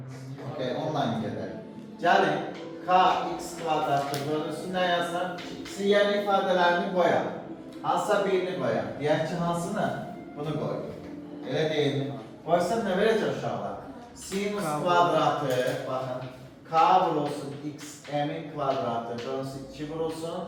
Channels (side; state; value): both; identical; correlation 1.00